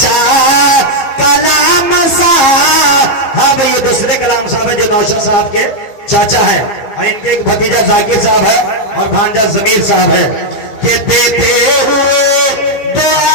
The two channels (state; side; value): late; right; 15 ms